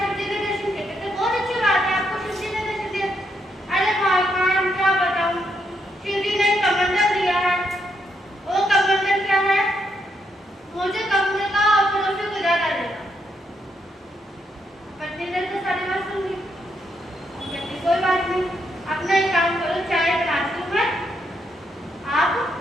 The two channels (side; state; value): both; normal; correlation 0.78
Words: शिव जी ने दर्शन किए, कहते बहुत अच्छी बात है, आपको शिव जी ने दर्शन दिया। अरे भाई खान क्या बताऊं, शिव जी ने कमंडल दिया है, वो कमंडल क्या है, मुझे कमंडल का पड़ोसी को ज्यादा देगा। पत्नी ने तो सारी बात सुन ली, कहती कोई बात नहीं, अपना एक काम करो, चाय बनाती हूँ मैं, आप